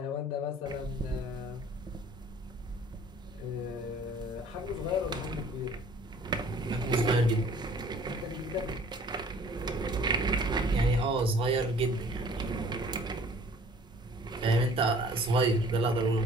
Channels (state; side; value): normal; both; correlation 0.52